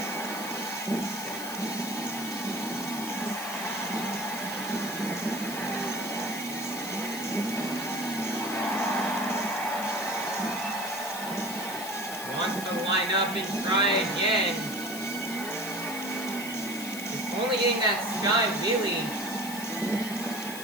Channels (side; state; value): left; noise; hiss, 9 dB below the sound